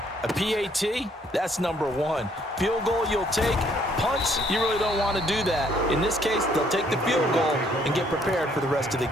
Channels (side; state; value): both; normal; correlation 0.65